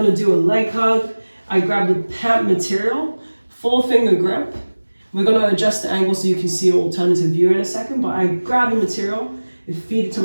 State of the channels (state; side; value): inverted; both; correlation -1.00